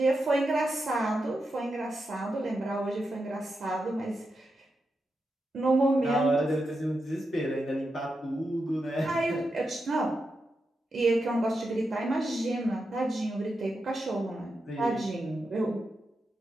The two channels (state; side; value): normal; both; correlation 0.87